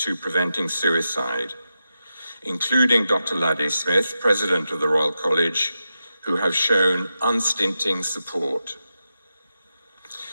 preventing suicide, including Dr. Laddy Smith, President of the Royal College, who have shown unstinting support.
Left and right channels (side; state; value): both; inverted; correlation -0.89